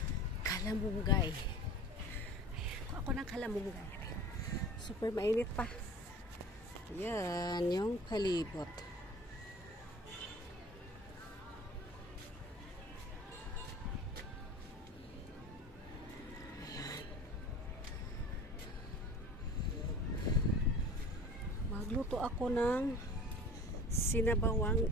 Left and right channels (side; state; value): both; normal; correlation 0.41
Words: kalamunggay. Ayan, ako ng kalamunggay. Ayan. Super mainit pa. Ayan, yung palibot. Magluto ako ng sinabawang